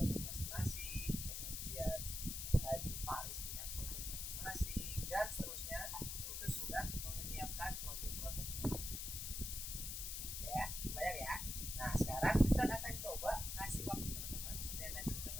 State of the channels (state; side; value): noise; left; hiss, 4 dB below the sound